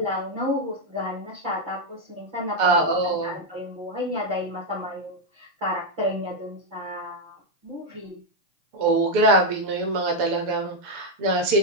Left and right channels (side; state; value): left; late; 6.8 ms